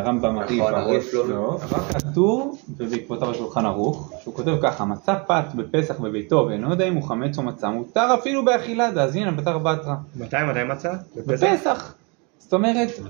מעריף לא, אבל כתוב, ובעקבותיו השולחן ערוך, שהוא כותב ככה, מצא פת בפסח בביתו, ואינו יודע אם הוא חמץ או מצא, מותר אפילו באכילה, אז הנה בתר בתרא. מתי מצא? בפסח. זאת אומרת,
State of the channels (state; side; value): quieter; left; 31.5 dB